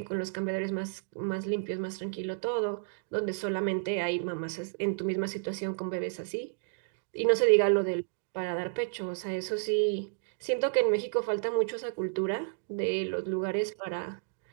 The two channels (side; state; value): left; silent; digital silence